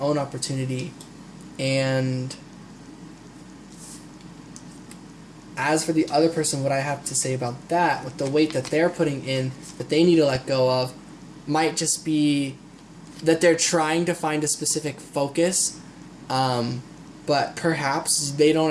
opportunity. And as for the other person, what I have to say about that, with the weight that they're putting in, that they need to let go of, might just be that they're trying to find a specific focus, but perhaps they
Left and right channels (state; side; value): identical; both; correlation 1.00